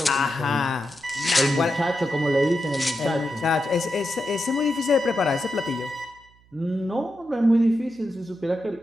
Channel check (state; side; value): noise; right; hum, 30 dB below the sound